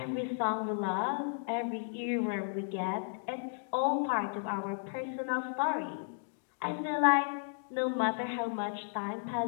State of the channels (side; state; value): right; silent; digital silence